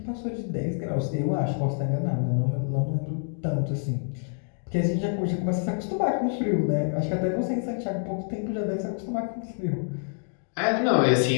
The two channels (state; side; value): silent; right; 60 dB below the other